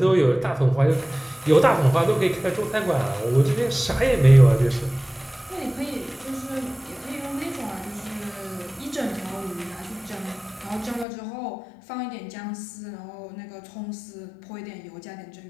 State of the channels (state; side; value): drops out; right; at 11.1 s